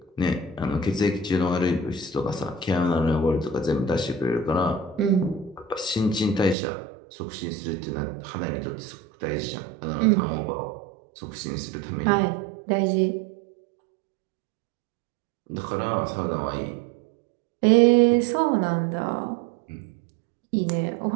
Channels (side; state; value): left; drops out; at 6.6 s